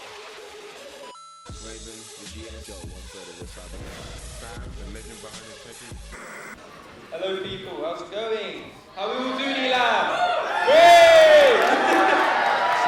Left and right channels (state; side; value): identical; both; correlation 1.00